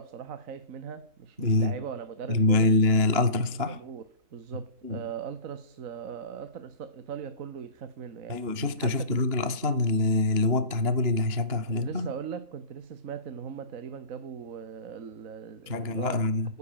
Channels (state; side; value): late; left; 3.0 ms